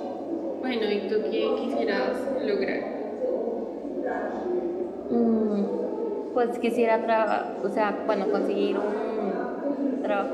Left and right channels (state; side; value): identical; both; correlation 1.00